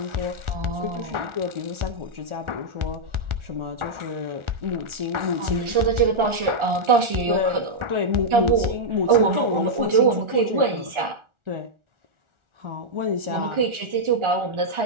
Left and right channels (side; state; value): left; late; 1.4 ms